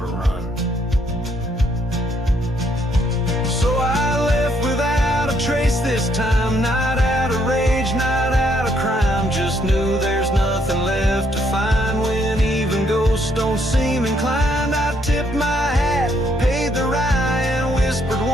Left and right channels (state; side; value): normal; both; correlation 0.71